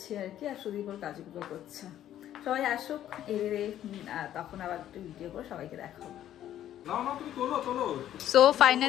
আর কি। আর সুদীপ ওর কাজগুলো করছে। সবাই আসুক, তখন আবার একটু ভিডিও করে সবাইকে দেখাবো। সো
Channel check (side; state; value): right; quieter; 11.7 dB